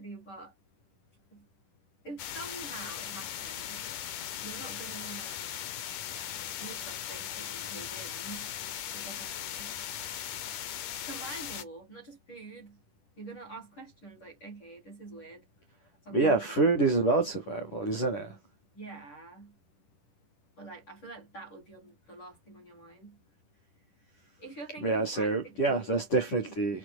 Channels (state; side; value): late; right; 10 ms